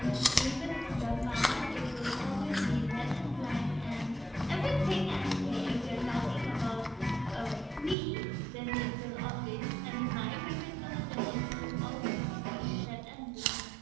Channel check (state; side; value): drops out; left; at 8.0 s